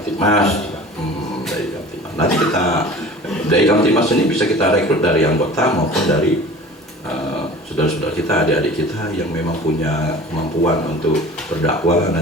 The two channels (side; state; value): both; normal; correlation 0.42